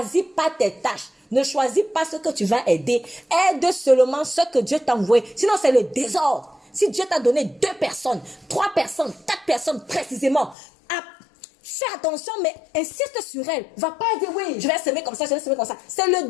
pas tes tâches. Ne choisis pas ce que tu vas aider. Aide seulement ce que Dieu t'a envoyé. Sinon, c'est le désordre. Si Dieu t'a donné 2 personnes, 3 personnes, 4 personnes précisément, fais attention, mais insiste sur elle. Va pas dire, oui, je vais semer comme ça, je vais semer comme ça. C'est le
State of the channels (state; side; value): drops out; right; at 10.6 s